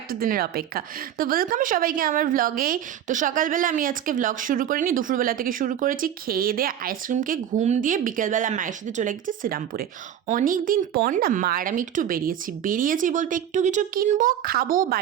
দিনের অপেক্ষা। তো ওয়েলকাম সবাইকে আমার ভ্লগে। তো সকালবেলা আমি আজকে ভ্লগ শুরু করিনি, দুপুরবেলা থেকে শুরু করেছি। খেয়ে দিয়ে আইসক্রিমকে ঘুম দিয়ে বিকেলবেলা মায়ের সাথে চলে গেছি শ্রীরামপুরে। অনেক দিন পর না মা আর আমি একটু বেরিয়েছি বলতে একটু কিছু কিনবো, খাবো,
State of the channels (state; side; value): quieter; left; 10.1 dB